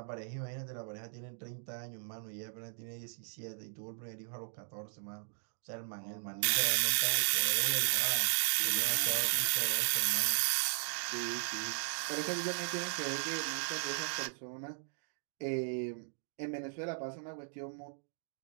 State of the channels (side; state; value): left; silent; digital silence